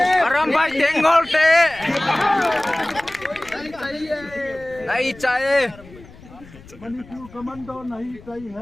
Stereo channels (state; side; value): noise; left; rumble, 21 dB below the sound